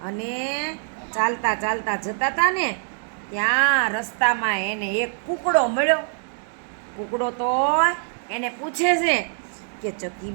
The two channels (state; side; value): silent; left; digital silence